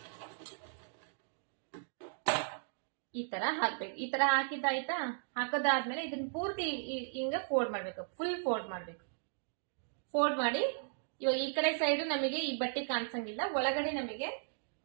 ಈ ತರ ಹಾಕ್ಬೇಕು. ಈ ತರ ಹಾಕಿದ್ದಾಯ್ತಾ. ಹಾಕದಾದ್ಮೇಲೆ ಇದನ್ನ ಪೂರ್ತಿ ಹಿಂಗ ಫೋಲ್ಡ್ ಮಾಡ್ಬೇಕು, ಫುಲ್ ಫೋಲ್ಡ್ ಮಾಡ್ಬೇಕು. ಫೋಲ್ಡ್ ಮಾಡಿ ಇವಾಗ ಈ ಕಡೆ ಸೈಡ್ ನಮಗೆ ಈ ಬಟ್ಟೆ ಕಾಣಿಸಂಗಿಲ್ಲ, ಒಳಗಡೆ ನಮಗೆ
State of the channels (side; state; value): left; silent; digital silence